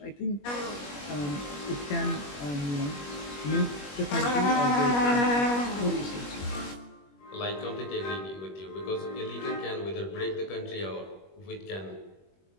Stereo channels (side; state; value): right; late; 21 ms